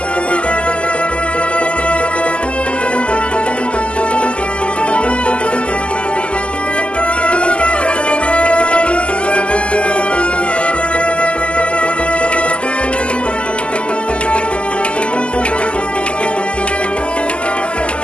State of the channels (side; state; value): right; late; 0.054 ms